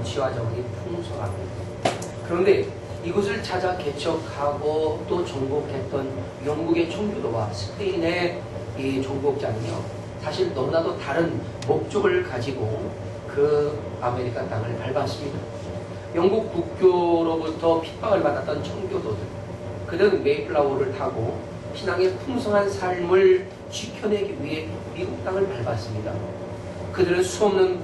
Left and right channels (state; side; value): identical; both; correlation 1.00